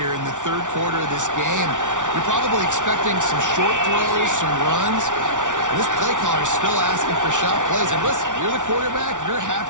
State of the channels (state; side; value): late; left; 0.87 ms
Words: in the 3rd quarter of this game. You're probably expecting some short throws, some runs. This play caller is still asking for shot plays. And listen, you're the quarterback. You're